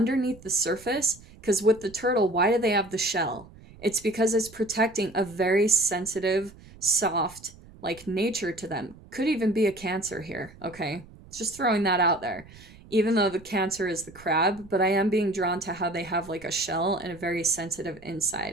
the surface, because with the turtle, why do they have the shell? It's because it's protecting a very sensitive, soft, like nature to them. Could even be a Cancer here, okay? Just throwing that out there. Even though the Cancer is the crab, but I am being drawn to how they have like a shell and a very sensitive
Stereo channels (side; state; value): right; noise; rumble, 21 dB below the sound